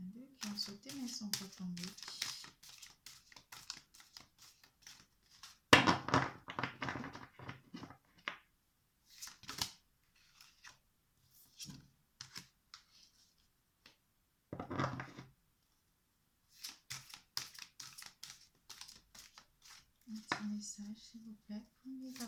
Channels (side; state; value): both; identical; correlation 1.00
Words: deux qui ont sauté mais ils ne sont pas tombés. Un petit message s'il vous plaît pour les